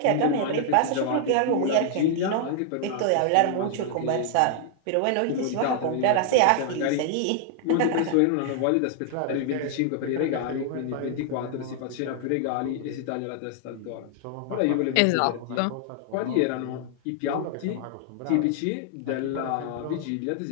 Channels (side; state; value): both; different; correlation 0.00